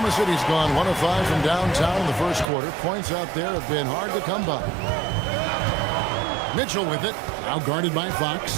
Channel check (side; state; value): left; drops out; at 2.5 s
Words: City's gone 1 of 5 from downtown in the first quarter. Points out there have been hard to come by. Mitchell with it. Now guarded by